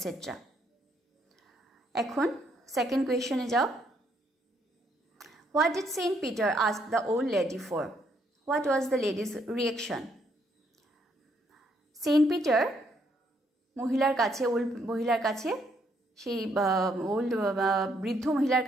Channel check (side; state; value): both; normal; correlation 0.72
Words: এখন সেকেন্ড কোয়েশনে যাও। What did Saint Peter ask the old lady for? What was the lady's reaction? Saint Peter মহিলার কাছে সেই বৃদ্ধ মহিলার